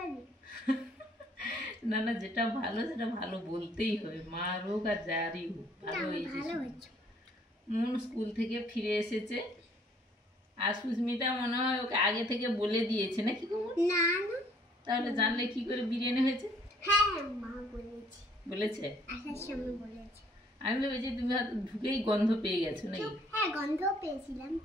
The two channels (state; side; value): normal; both; correlation 0.62